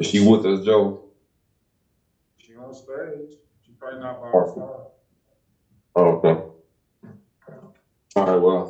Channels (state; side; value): identical; both; correlation 1.00